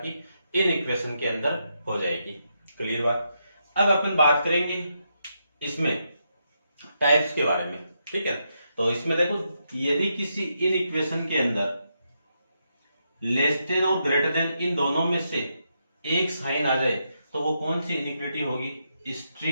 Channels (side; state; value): both; inverted; correlation -0.82